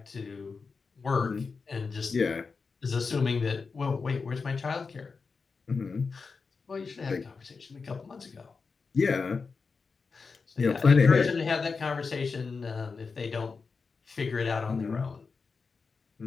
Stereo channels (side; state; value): right; quieter; 4.8 dB